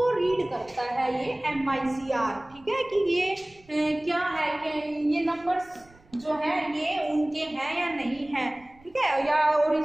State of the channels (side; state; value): right; noise; rumble, 28 dB below the sound